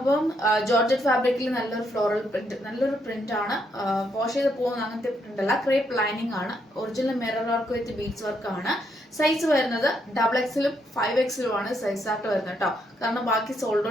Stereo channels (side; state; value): both; normal; correlation 0.76